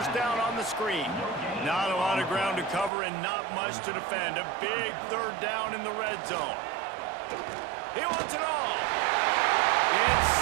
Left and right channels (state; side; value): drops out; left; at 2.9 s